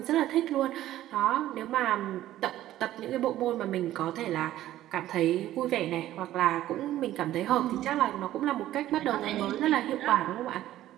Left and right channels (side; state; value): left; quieter; 13.7 dB